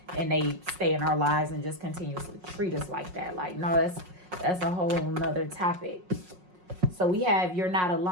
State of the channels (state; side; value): late; left; 5.5 ms